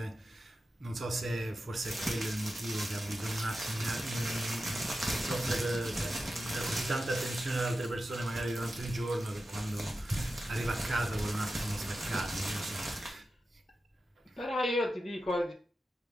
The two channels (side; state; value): both; normal; correlation 0.91